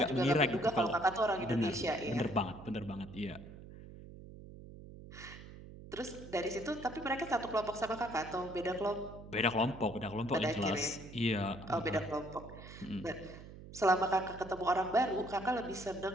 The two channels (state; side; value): noise; right; hum, 15 dB below the sound